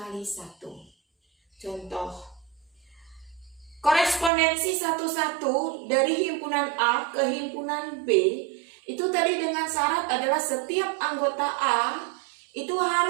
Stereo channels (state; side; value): drops out; left; at 4.3 s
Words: 1. Contoh, korespondensi 1,1 dari himpunan A ke himpunan B itu tadi dengan syarat adalah setiap anggota A itu